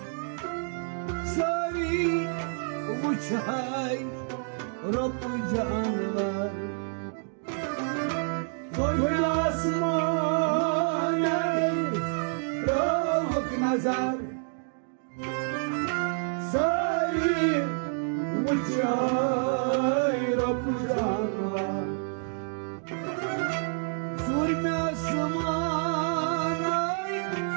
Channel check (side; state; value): left; silent; 59 dB below the other